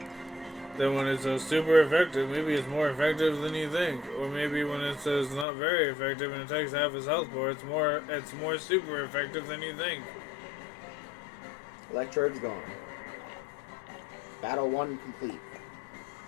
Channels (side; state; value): right; drops out; at 5.5 s